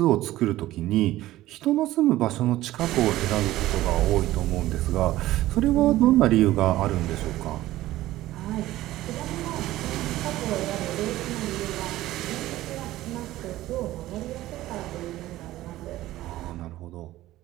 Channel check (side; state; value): left; quieter; 15.7 dB